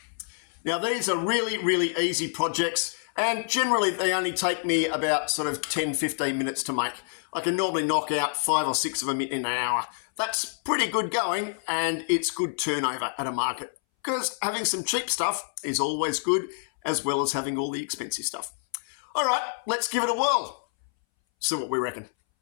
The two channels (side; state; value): right; silent; 60 dB below the other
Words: Now these are really easy projects, and generally they only take me about sort of 10-15 minutes to make. I can normally knock out 5 or 6 of them in an hour. That's pretty good going, and it's good turnover at a market, because having some cheap stuff is always good, as well as having all the expensive stuff. All right, let's give it a whirl. See what we reckon.